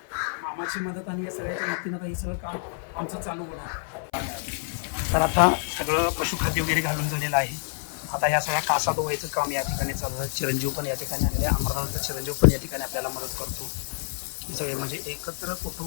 मामाची मदत आणि या सगळ्याच्या मदतीनं हे सगळं काम आमचं चालू होणार. तर आता सगळं पशुखाद्य वगैरे घालून झालेलं आहे. आता या सगळ्या कासा धुवायचं काम या ठिकाणी चालू आहे. चिरंजीव पण या ठिकाणी आलेले आहे, अमरनाथचा चिरंजीव पण या ठिकाणी आपल्याला मदत करतो. हे सगळे म्हणजे एकत्र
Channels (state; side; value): silent; right; 56 dB below the other